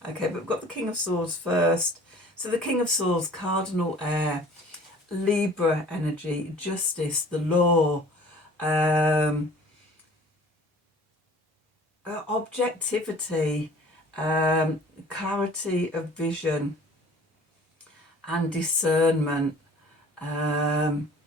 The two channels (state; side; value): normal; both; correlation 0.48